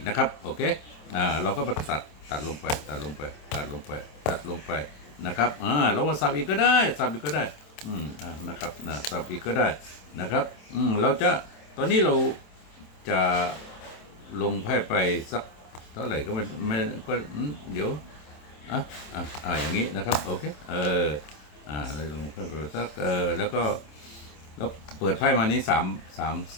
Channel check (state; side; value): late; right; 27 ms